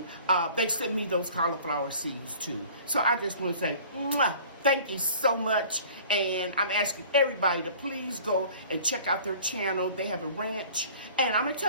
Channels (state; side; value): inverted; both; correlation -0.47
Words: they sent me those cauliflower seeds too. So I just want to say, mwah, thank you so much. And I'm asking everybody to please go and check out their channel. They have a ranch. And I'm going to